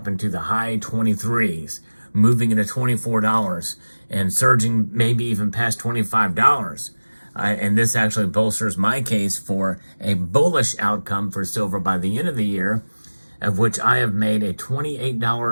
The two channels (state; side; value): inverted; both; correlation -1.00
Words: into the high 23s, moving into $24 and surging maybe even past $25. And this actually bolsters my case for a bullish outcome for silver by the end of the year, of which I have made a